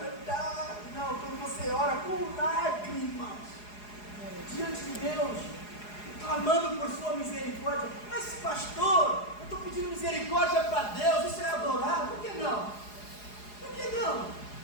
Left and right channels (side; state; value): right; late; 4.8 ms